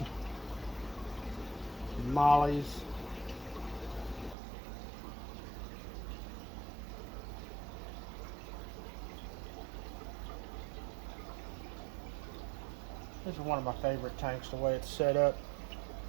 Mollies. This is one of my favorite tanks, the way it's set up.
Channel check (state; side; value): drops out; left; at 4.4 s